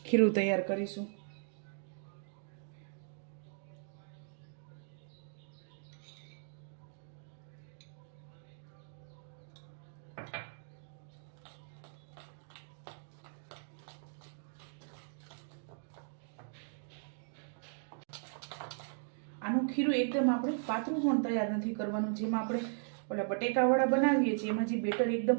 ખીરું તૈયાર કરીશું. આનું ખીરું એકદમ આપણે પાતળું પણ તૈયાર નથી કરવાનું. જેમાં આપણે ઓલા બટેકાવાળા બનાવીએ છીએ એમાં જે બેટર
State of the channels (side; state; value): left; silent; digital silence